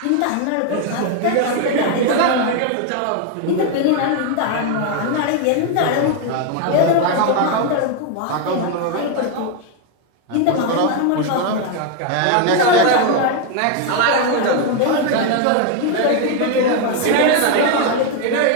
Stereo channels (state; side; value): different; both; correlation 0.01